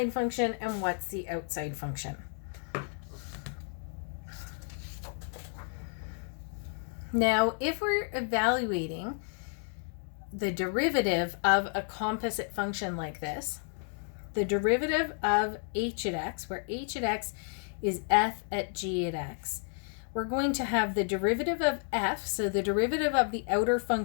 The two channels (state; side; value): silent; right; 57 dB below the other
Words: function and what's the outside function. Now, if we're evaluating the derivative of a composite function like this, the derivative of h at x, where h at x is f at g at x, we're going to have the derivative of f, so the derivative of the outer